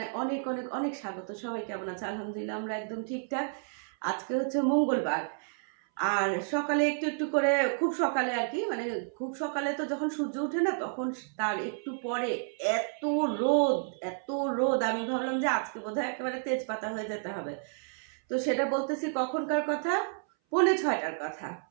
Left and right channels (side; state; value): left; silent; 57 dB below the other